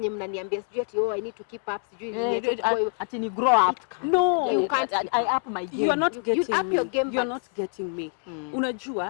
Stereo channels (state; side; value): silent; right; 55 dB below the other